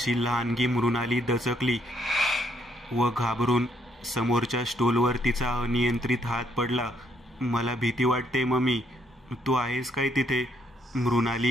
लहानगी मृणाली दचकली व घाबरून समोरच्या स्टूलवर तिचा अनियंत्रित हात पडला. मला भीती वाटते मम्मी, तू आहेस काय तिथे?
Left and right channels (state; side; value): normal; both; correlation 0.71